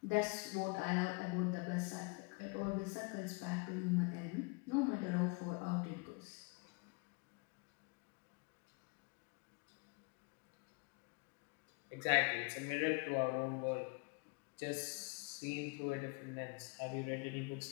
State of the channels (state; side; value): quieter; right; 31.0 dB